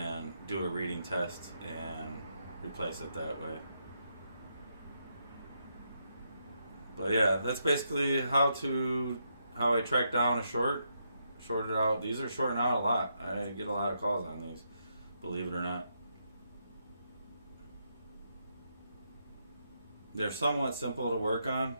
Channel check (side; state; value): both; inverted; correlation -0.80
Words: do a reading test and replace it that way. But yeah, that's basically how I track down a shorted out. These are shorting out a lot. I get a lot of calls on these, believe it or not. They're somewhat simple to work on